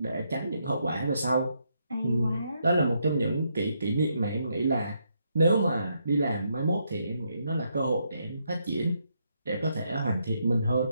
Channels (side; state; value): both; inverted; correlation -0.77